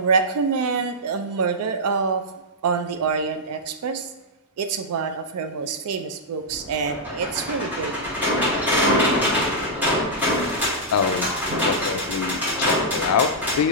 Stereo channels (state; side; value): normal; both; correlation -0.09